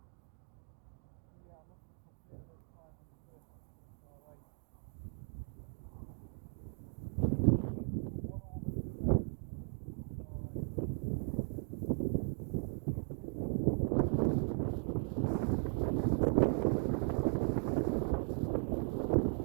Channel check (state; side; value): silent; left; 53 dB below the other